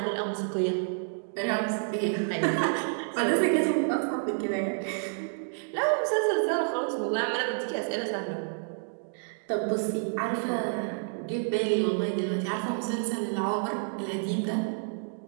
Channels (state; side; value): silent; left; digital silence